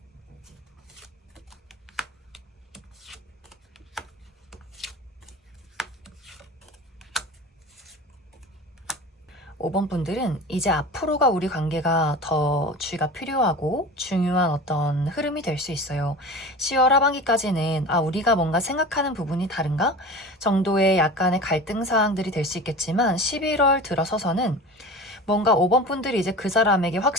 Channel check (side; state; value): both; normal; correlation 0.34